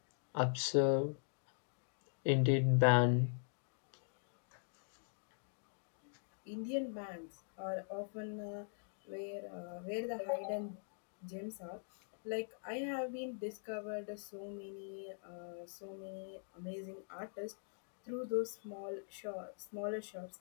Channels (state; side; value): silent; right; digital silence